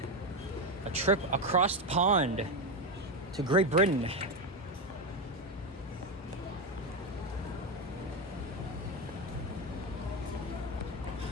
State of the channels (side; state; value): both; normal; correlation 0.12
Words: A trip across the pond to Great Britain.